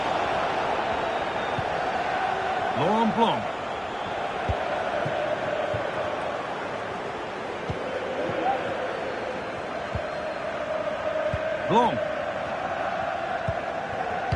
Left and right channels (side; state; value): both; identical; correlation 1.00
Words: Laurent Blanc. Blanc.